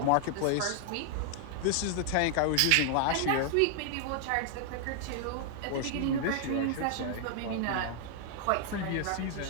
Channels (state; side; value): different; both; correlation 0.00